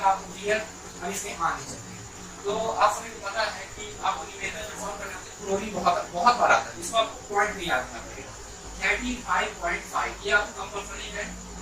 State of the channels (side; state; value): both; identical; correlation 1.00